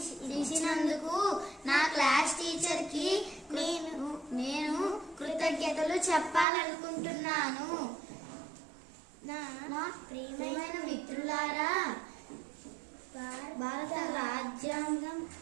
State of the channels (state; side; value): drops out; left; at 6.5 s